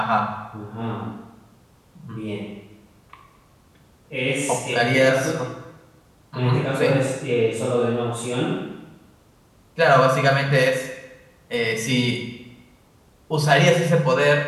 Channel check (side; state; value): both; identical; correlation 1.00